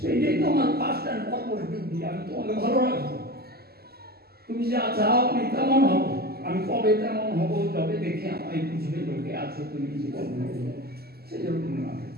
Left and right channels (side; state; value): left; late; 0.46 ms